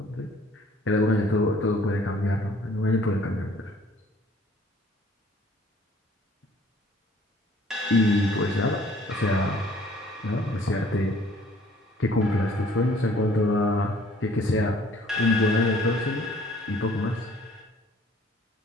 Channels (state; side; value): normal; both; correlation 0.57